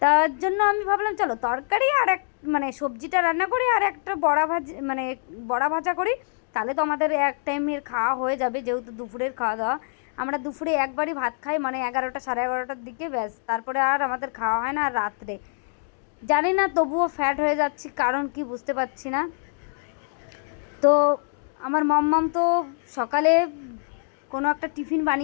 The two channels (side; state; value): right; silent; digital silence